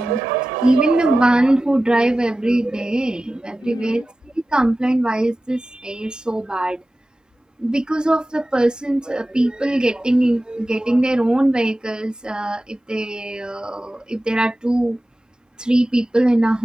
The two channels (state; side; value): normal; both; correlation 0.95